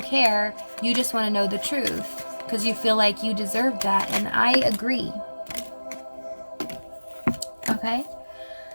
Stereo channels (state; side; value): inverted; both; correlation -1.00